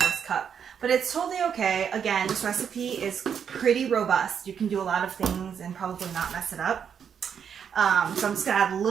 cup, but it's totally okay. Again, this recipe is pretty robust. You can do a lot of things and probably not mess it up. So I'm just gonna add a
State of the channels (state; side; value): quieter; left; 7.6 dB